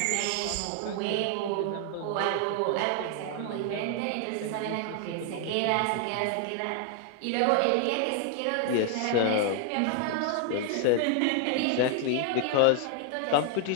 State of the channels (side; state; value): both; different; correlation 0.00